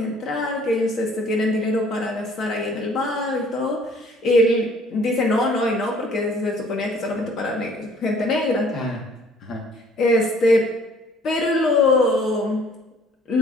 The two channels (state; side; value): normal; both; correlation 0.57